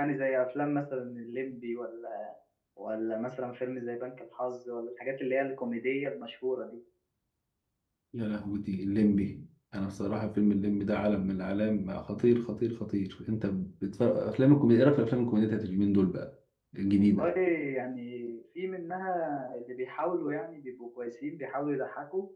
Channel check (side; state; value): both; identical; correlation 1.00